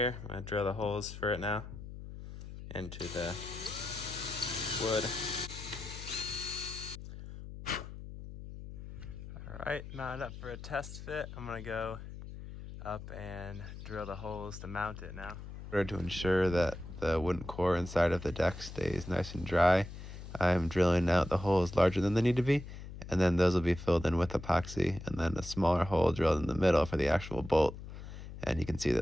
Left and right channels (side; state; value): left; noise; hum, 11 dB below the sound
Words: I'm gonna drill the holes for it now into the wood. All right, mounted up for a test fit. I'm gonna go up and drill the holes to mount it now. In order to ensure that the wooden core inside of the deck stays nice and dry, I'm drilling out the holes larger than they need to be, and then those will be filled in with epoxy, and then a smaller hole drilled in the middle for the actual bolt. And you can see